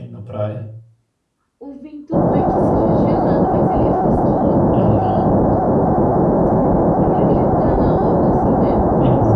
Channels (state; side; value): identical; both; correlation 1.00